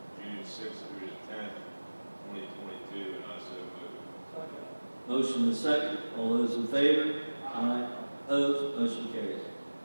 June 6th through the 10th, 2022, and I so move. Second. Motion and second. All those in favor? Aye. Opposed? Motion carries.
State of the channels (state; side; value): inverted; both; correlation -1.00